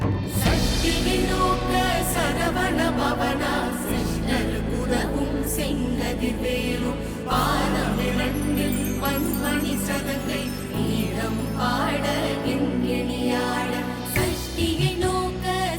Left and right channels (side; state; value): both; identical; correlation 1.00